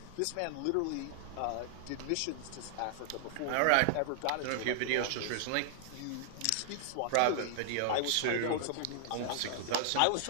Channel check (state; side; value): different; both; correlation 0.00